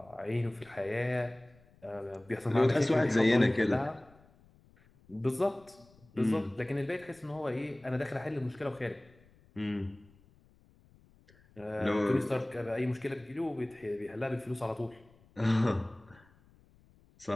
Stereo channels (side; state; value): left; noise; rumble, 28 dB below the sound